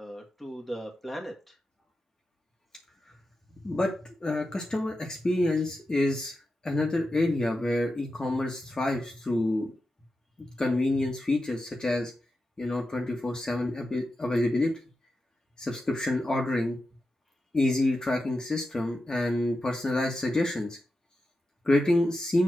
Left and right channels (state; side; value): normal; both; correlation 0.90